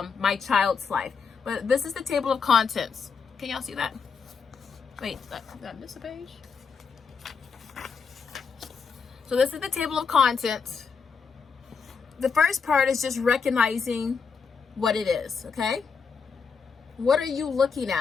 my child's life. But this is the table of contents. Can y'all see that? Wait, did I miss a page? So this is the table of contents. The first part is just recognizing what it is, okay? What are you looking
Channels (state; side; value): quieter; right; 5.7 dB